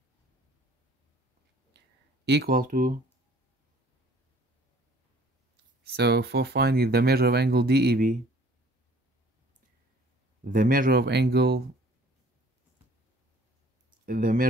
equal to, so for finding the measure of angle DEB, the measure of angle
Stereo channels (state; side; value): normal; both; correlation 0.54